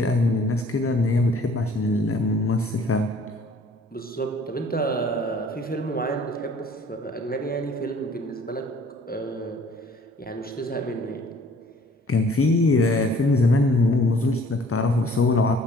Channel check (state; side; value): normal; both; correlation 0.54